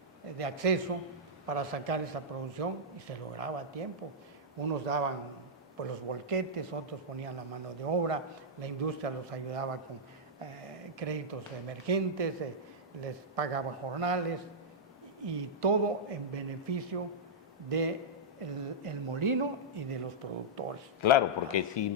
de acceso para sacar esa producción, y se lograba a tiempo. Unos daban pues los volquetes, otros ponían la mano de obra, la industria los ayudaba con créditos emergentes, les pagaba jornales, y todo en beneficio de el molino y de los productores. Claro, porque si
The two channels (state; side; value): normal; both; correlation -0.09